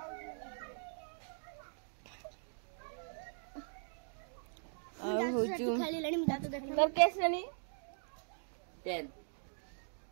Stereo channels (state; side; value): silent; left; digital silence